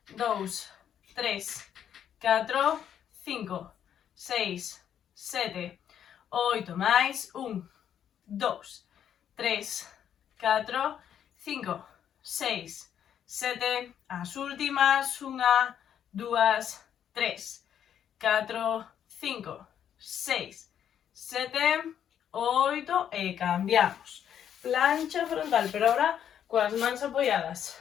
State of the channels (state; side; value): quieter; right; 9.3 dB